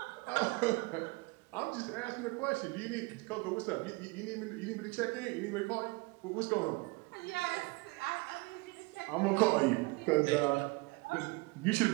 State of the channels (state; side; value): quieter; left; 25.7 dB